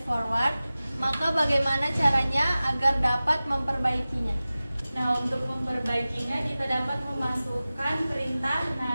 forward, maka bagaimana caranya agar dapat memperbaikinya? Nah, untuk memperbaikinya kita dapat memasukkan perintah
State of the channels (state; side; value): inverted; both; correlation -0.97